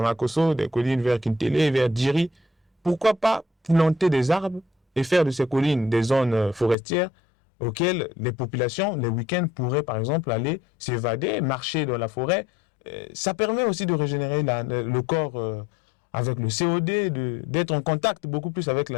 des collines vers Kintélé, vers Djiri. Pourquoi pas planter des arbres et faire de ces collines des zones forestières auxquelles les populations, les week-ends, pourraient par exemple aller s'évader, marcher dans la forêt. Ça permet aussi de régénérer le corps avec le COD, d'être en contact beaucoup plus avec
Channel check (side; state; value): right; drops out; at 6.8 s